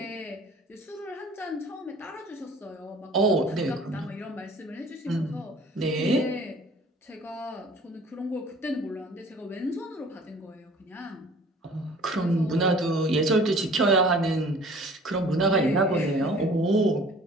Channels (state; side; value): normal; both; correlation 0.49